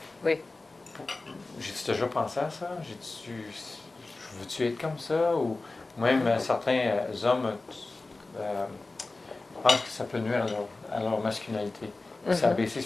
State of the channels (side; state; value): right; quieter; 3.3 dB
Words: Oui. J'ai-tu déjà pensé à ça? Veux-tu être comme ça? Ou même certains hommes pensent que ça peut nuire à leur masculinité. C'est Mhm. abaissé